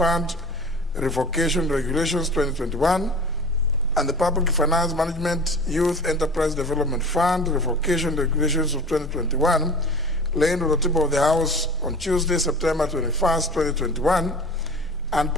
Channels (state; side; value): normal; both; correlation 0.38